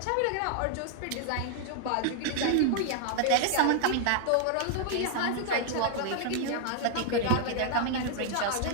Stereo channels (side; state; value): both; different; correlation 0.00